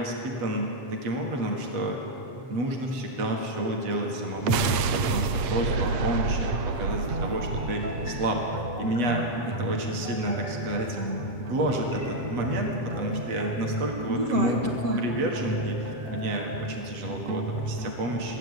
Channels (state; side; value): late; left; 8.4 ms